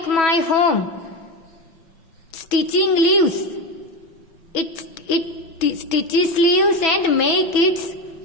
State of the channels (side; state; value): right; late; 6.1 ms